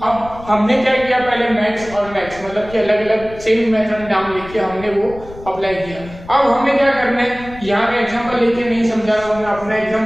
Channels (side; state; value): left; noise; rumble, 17 dB below the sound